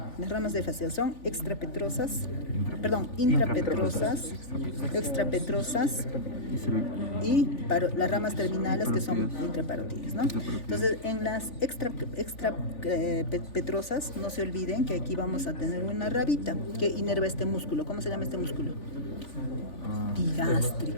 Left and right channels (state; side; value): late; right; 3.4 ms